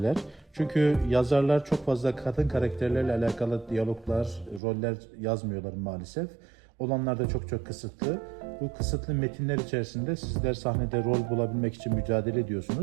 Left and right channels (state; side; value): drops out; left; at 4.6 s